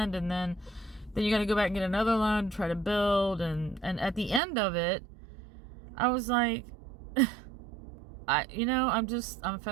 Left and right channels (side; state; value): left; drops out; at 4.4 s